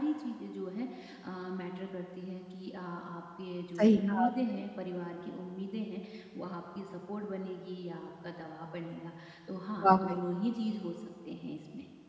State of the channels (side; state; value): both; identical; correlation 1.00